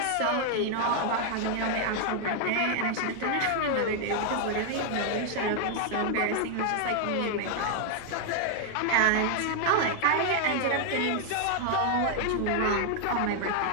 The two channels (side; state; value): both; different; correlation 0.00